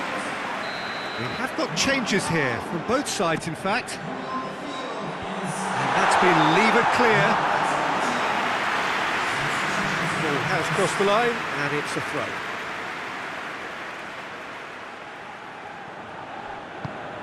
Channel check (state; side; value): identical; both; correlation 1.00